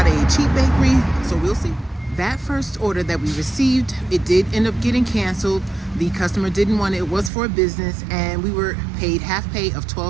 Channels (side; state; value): left; drops out; at 7.3 s